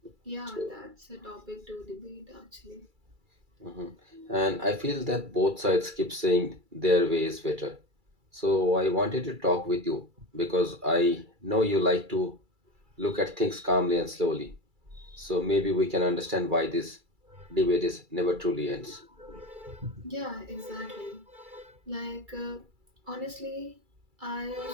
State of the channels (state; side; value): late; left; 2.3 ms